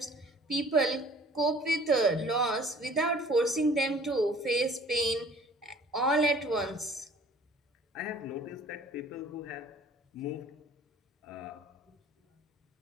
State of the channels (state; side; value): normal; both; correlation 0.52